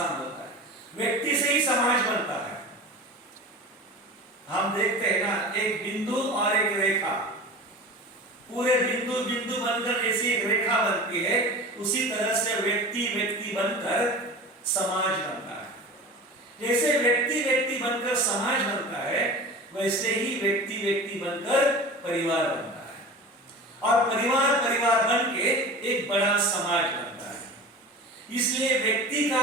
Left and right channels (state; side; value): normal; both; correlation 0.34